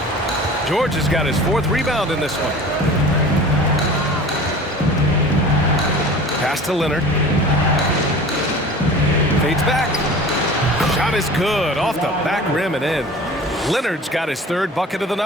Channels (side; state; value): both; normal; correlation 0.40